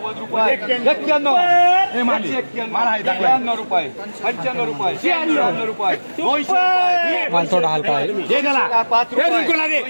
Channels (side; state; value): both; inverted; correlation -1.00